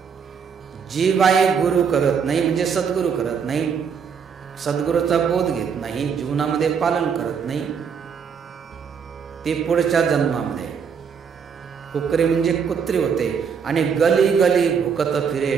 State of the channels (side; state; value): left; quieter; 6.6 dB